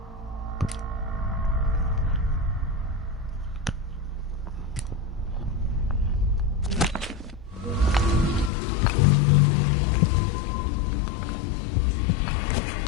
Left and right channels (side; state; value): right; drops out; at 8.5 s